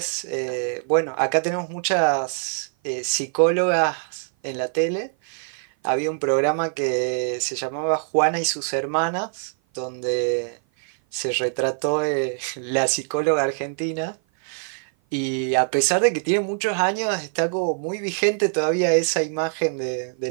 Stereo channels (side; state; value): left; silent; 56 dB below the other